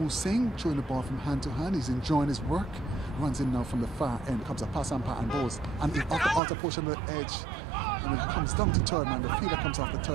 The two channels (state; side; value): drops out; left; at 6.4 s